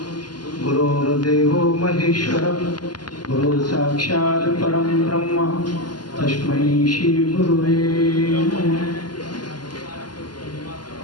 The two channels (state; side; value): late; right; 0.71 ms